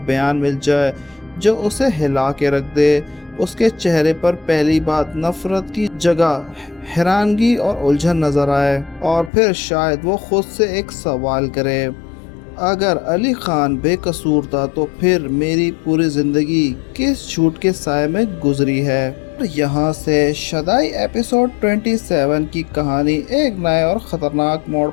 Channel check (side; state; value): right; drops out; at 9.3 s